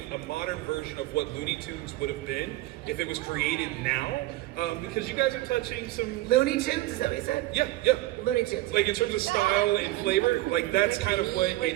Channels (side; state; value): left; quieter; 17.7 dB